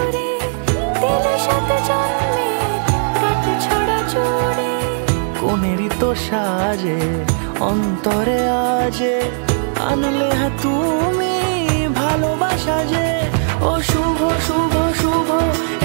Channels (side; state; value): left; silent; digital silence